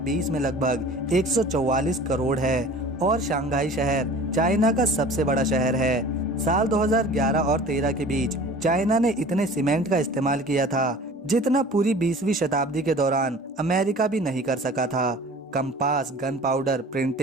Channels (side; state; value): both; normal; correlation 0.43